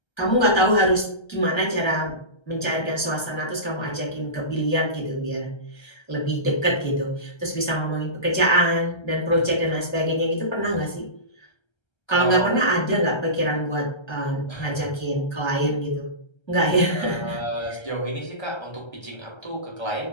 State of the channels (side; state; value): right; late; 1.3 ms